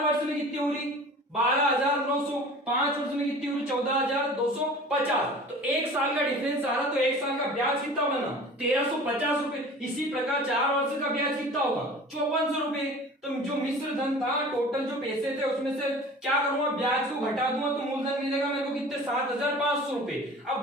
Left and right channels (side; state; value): both; normal; correlation 0.42